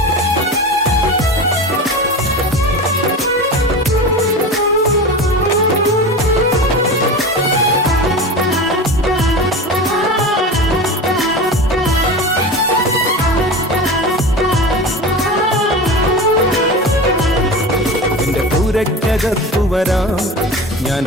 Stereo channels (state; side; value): normal; both; correlation 0.29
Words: കത്തു വരാം, ഞാൻ